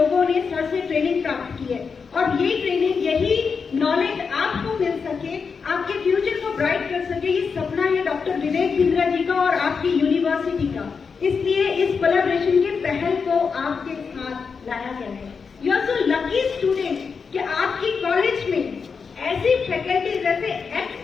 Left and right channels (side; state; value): right; quieter; 5.5 dB